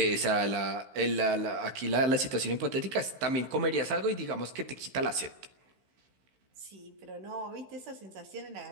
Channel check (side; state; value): left; late; 15 ms